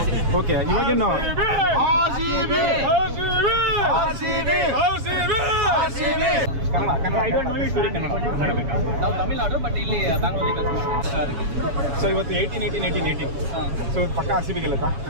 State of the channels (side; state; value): left; late; 7.1 ms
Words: ಓಕೆ, ಇವಾಗೇನು ನಾವು ತಮಿಳ್ನಾಡು, ಬಟ್ ಇಲ್ಲಿ ಬ್ಯಾಂಗ್ಳೂರಲ್ಲಿ. ಸೊ ಇವತ್ತು 18. ಸೊ ಪಕ್ಕ RCB ಗೆಲ್ಲುತ್ತಾ?